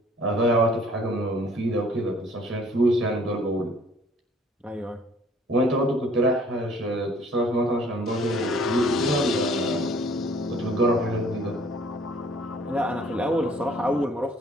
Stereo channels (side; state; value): both; normal; correlation 0.57